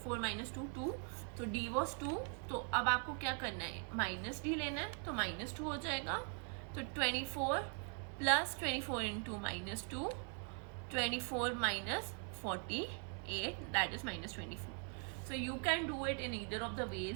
minus 2, 2, so D was 2. तो अब आपको क्या करना है, minus D लेना है, तो minus 2 हो जाएगा. तो 24 plus 24 into minus 2, 24 minus 48, that is minus 24. So you can do it in either of the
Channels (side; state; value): left; quieter; 39.8 dB